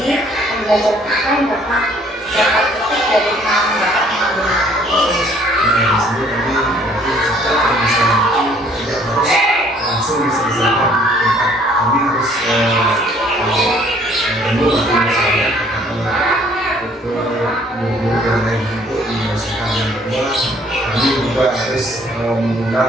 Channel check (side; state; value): both; normal; correlation 0.59